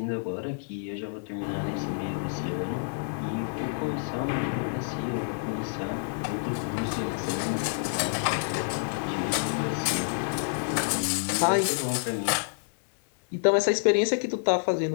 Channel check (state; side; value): silent; right; 59 dB below the other